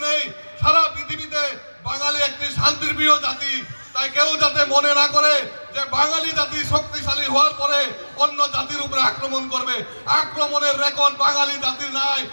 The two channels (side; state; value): both; inverted; correlation -1.00